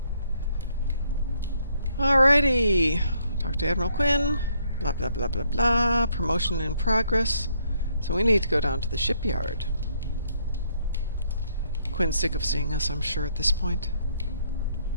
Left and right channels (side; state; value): both; inverted; correlation -0.70